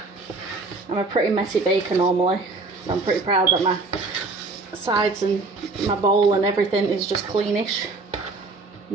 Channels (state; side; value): quieter; left; 3.7 dB